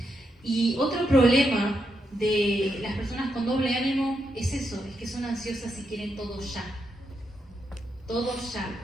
Y otro problema de las personas con doble ánimo es eso, es que son ansiosas y quieren todo ya. Todo ya.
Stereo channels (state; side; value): normal; both; correlation 0.82